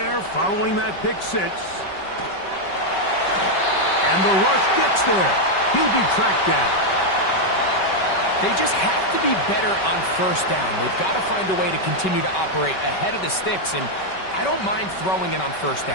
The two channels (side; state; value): right; late; 5.2 ms